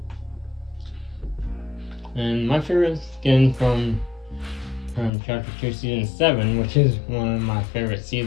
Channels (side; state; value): right; drops out; at 5.1 s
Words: And my favorite skin from Chapter 2 Season 7, which is one of my favorite